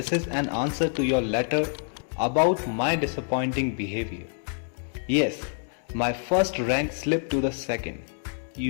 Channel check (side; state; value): right; silent; 60 dB below the other